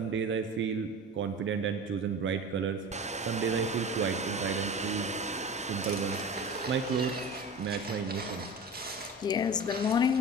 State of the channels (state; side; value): normal; both; correlation 0.33